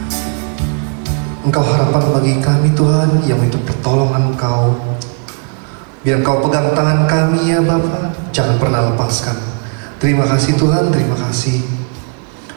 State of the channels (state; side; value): quieter; left; 38.3 dB